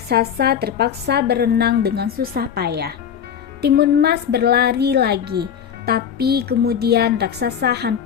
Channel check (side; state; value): right; quieter; 8.3 dB